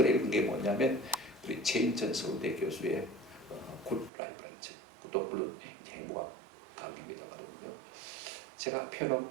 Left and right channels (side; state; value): left; drops out; at 4.1 s